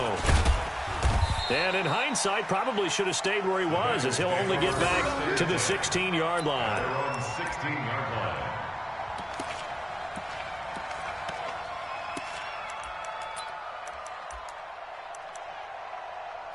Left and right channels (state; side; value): identical; both; correlation 1.00